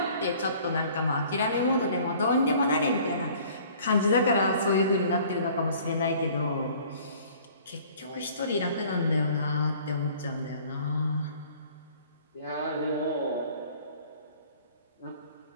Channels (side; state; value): both; inverted; correlation -0.52